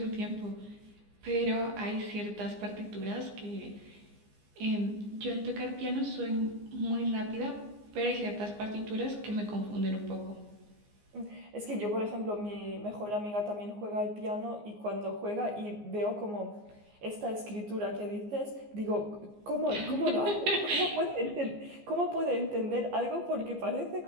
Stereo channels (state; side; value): late; left; 14 ms